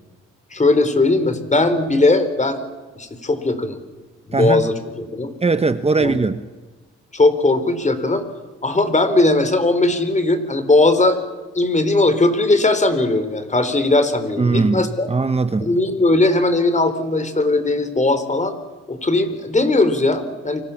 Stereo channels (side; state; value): both; normal; correlation 0.56